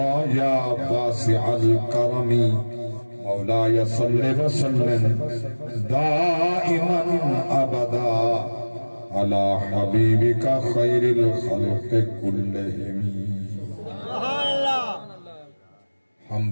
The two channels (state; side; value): inverted; both; correlation -1.00